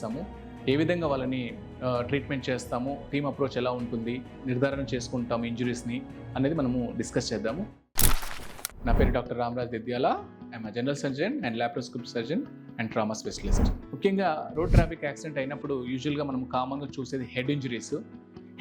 ఏ విధంగా వాళ్ళని ట్రీట్మెంట్ చేస్తాము, టీమ్ అప్రోచ్ ఎలా ఉంటుంది, నిర్ధారణ చేసుకుంటాము ఇంజురీస్ని అనేది మనము డిస్కస్ చేద్దాము. నా పేరు doctor Ramaraj Dedyala. I'm general surgeon and laparoscopic surgeon and trauma specialist. ముఖ్యంగా రోడ్ ట్రాఫిక్ యాక్సిడెంట్ అయినప్పుడు యూజువల్గా మనం కామన్గా చూసేది హెడ్ ఇంజరీస్.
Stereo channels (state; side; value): identical; both; correlation 1.00